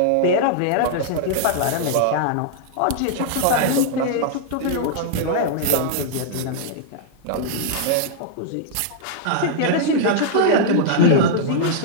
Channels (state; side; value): different; both; correlation -0.01